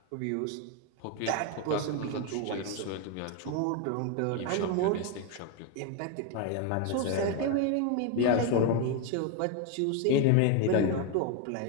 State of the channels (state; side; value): different; both; correlation 0.02